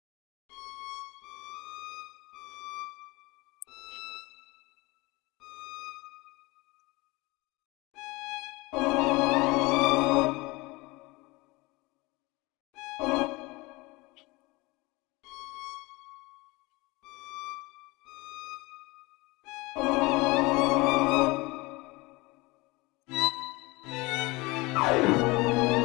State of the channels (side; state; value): right; quieter; 23.5 dB